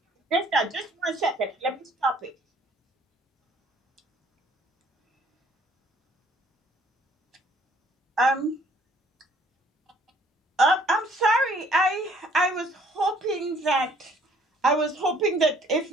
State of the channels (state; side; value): normal; both; correlation 0.60